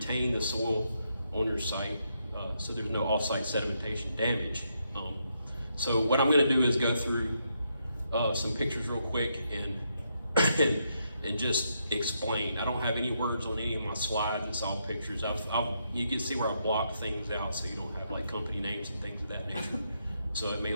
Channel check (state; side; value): inverted; both; correlation -0.79